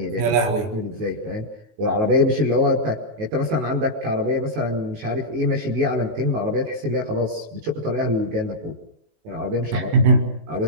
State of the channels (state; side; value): late; left; 19 ms